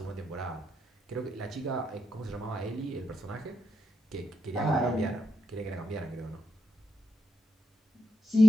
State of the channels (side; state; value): both; normal; correlation 0.84